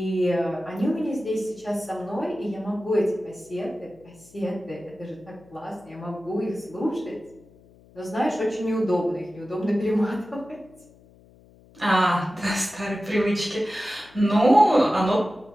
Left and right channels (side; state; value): left; noise; hum, 26 dB below the sound